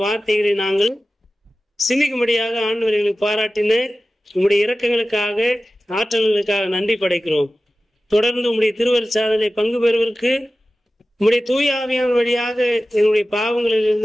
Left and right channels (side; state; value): both; normal; correlation 0.95